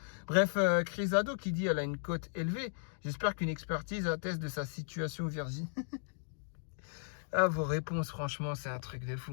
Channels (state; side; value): silent; right; digital silence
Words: Bref, Crisado qui dit elle a une cote élevée. J'espère qu'une expertise atteste de sa situation Virginie. Ah, vos réponses, franchement, c'est un truc de